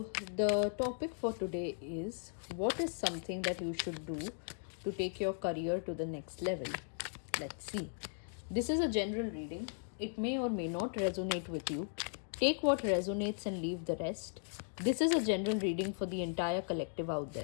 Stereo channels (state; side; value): silent; right; digital silence